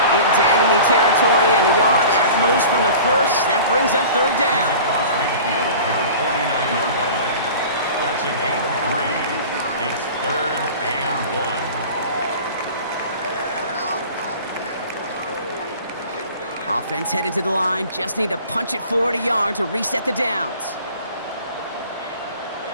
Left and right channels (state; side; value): inverted; both; correlation -0.41